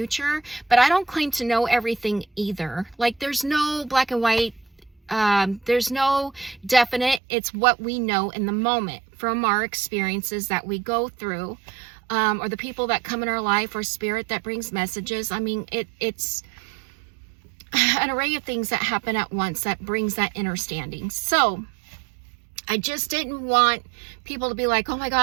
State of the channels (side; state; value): left; drops out; at 7.2 s